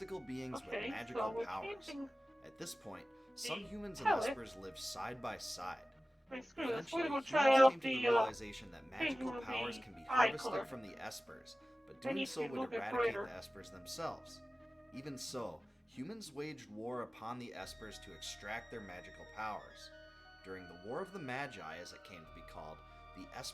beings with magical powers. At this point, some humans and espers lived side by side. Eventually, humans came to the realization that magical powers can be harvested from the espers, but doing so would eradicate the espers themselves. Even so, humans waged war upon the espers to extract their magical powers. During the War of the Magi, as it came to be called, the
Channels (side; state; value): both; normal; correlation 0.97